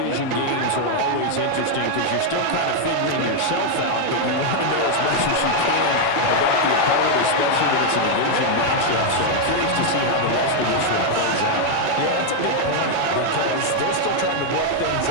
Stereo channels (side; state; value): both; different; correlation 0.00